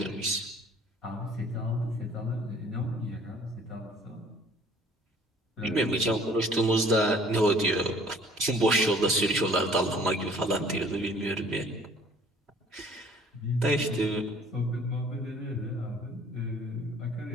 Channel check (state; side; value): normal; both; correlation 0.54